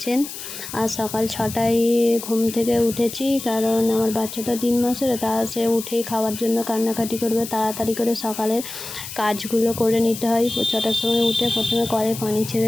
আজ সকাল 6টায় ঘুম থেকে উঠেছি, কারণ আমার বাচ্চাটা 3 মাসের। তা সে উঠেই খাওয়ার জন্য কান্নাকাটি করবে। তাড়াতাড়ি করে সকালের কাজগুলো করে নিতে হয়। 6টার সময় উঠে প্রথমে কলে পানি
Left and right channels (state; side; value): noise; left; hiss, 10 dB below the sound